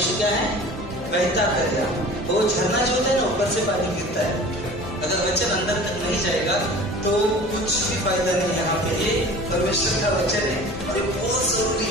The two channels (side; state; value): both; normal; correlation 0.41